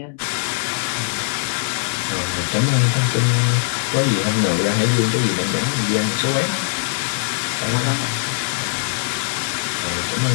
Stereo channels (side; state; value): right; silent; digital silence